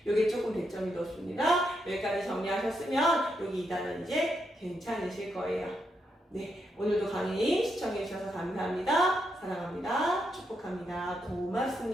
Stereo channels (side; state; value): both; normal; correlation 0.81